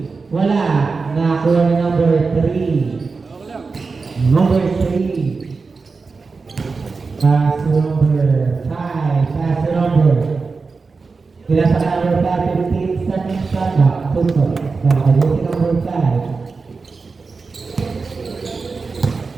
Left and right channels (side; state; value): left; quieter; 4.4 dB